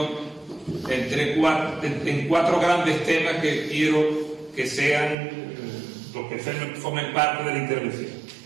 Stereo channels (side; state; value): left; drops out; at 5.2 s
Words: en cuatro grandes temas que quiero que sean los que formen parte de la intervención.